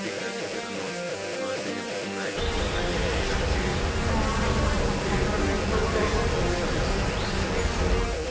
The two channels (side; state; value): both; identical; correlation 1.00